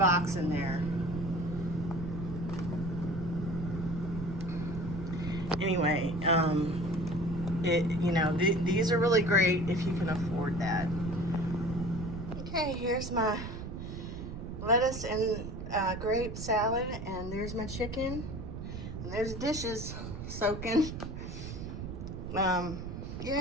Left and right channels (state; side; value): noise; right; rumble, 7 dB below the sound